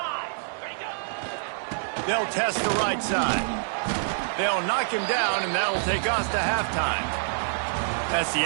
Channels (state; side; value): silent; left; digital silence